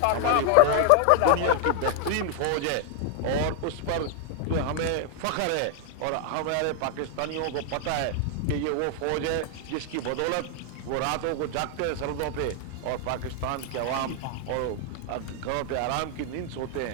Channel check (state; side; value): different; both; correlation 0.00